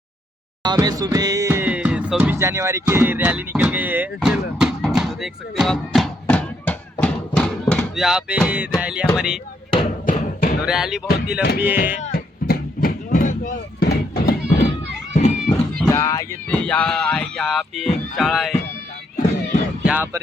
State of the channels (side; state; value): both; normal; correlation 0.74